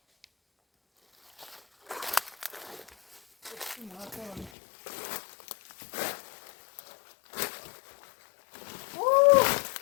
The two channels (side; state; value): right; drops out; at 4.5 s